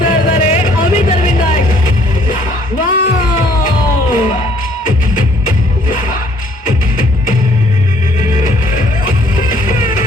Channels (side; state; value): both; normal; correlation 0.62